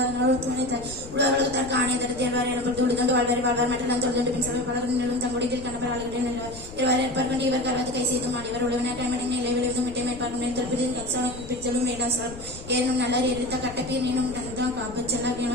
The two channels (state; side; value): noise; left; rumble, 15 dB below the sound